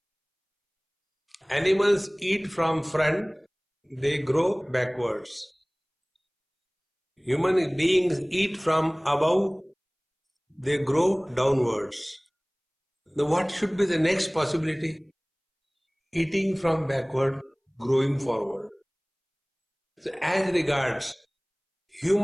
Animals eat from front, they grow backwards. Human beings eat from above, they grow downwards. Now what should be the next possibility? Eating from backward, growing forward. So as regards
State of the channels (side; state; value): both; identical; correlation 1.00